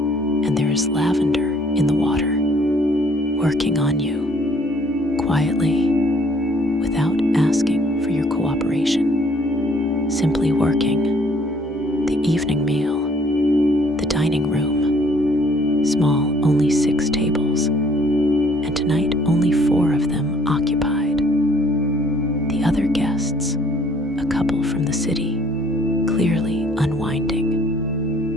And there is lavender in the water, working on you, quietly, without asking for your cooperation, simply working. The evening meal, the dining room, small, only 6 tables, and tonight only 4 of them occupied. The other guests, a couple from the city, clearly unwinding.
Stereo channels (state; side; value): normal; both; correlation 0.60